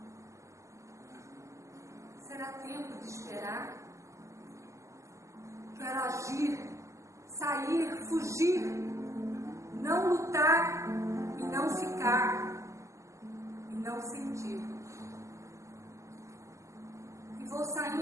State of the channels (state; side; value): late; left; 0.15 ms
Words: Será tempo de esperar? Quero agir, sair, fugir, não lutar e não ficar, e não sentir. E vou